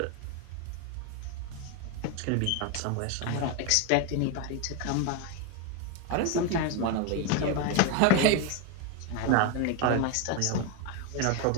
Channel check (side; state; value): both; different; correlation 0.01